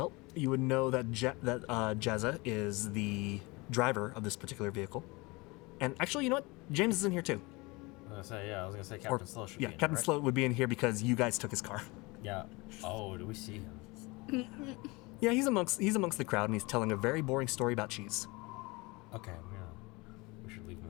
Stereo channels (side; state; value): right; quieter; 24.8 dB